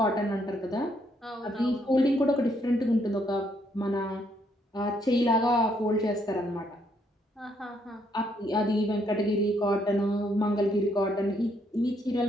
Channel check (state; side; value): normal; both; correlation 0.72